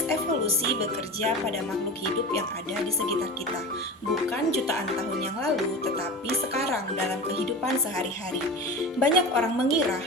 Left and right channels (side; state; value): both; normal; correlation 0.30